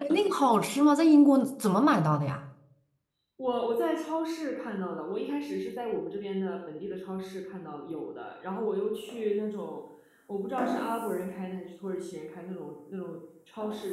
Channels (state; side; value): identical; both; correlation 1.00